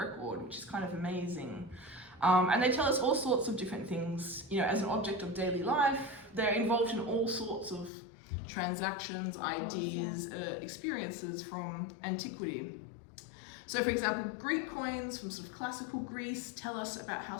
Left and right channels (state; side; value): drops out; right; at 7.9 s